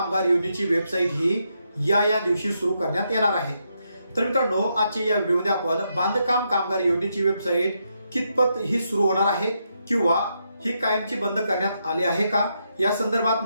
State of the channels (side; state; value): both; inverted; correlation -0.80